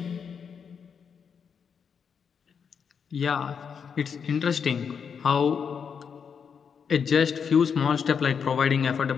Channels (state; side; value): quieter; right; 6.7 dB